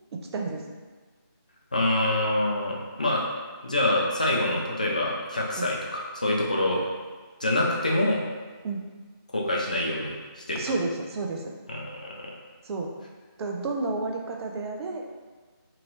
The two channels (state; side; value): inverted; both; correlation -0.62